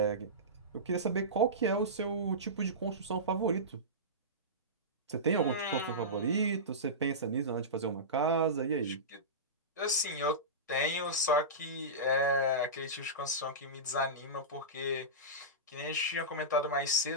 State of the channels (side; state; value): both; normal; correlation -0.18